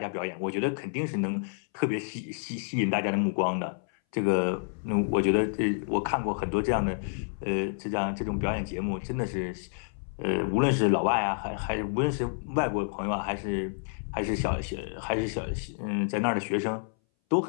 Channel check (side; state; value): right; silent; 58 dB below the other